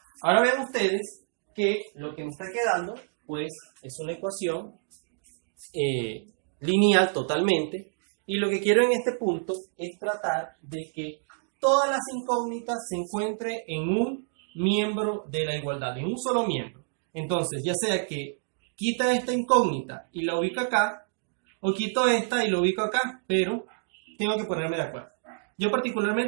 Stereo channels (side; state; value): left; silent; digital silence